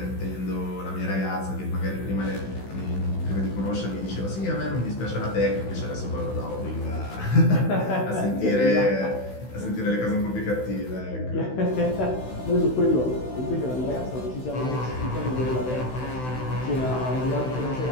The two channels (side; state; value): right; late; 16 ms